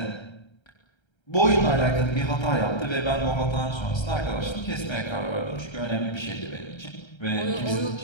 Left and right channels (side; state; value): right; late; 1.3 ms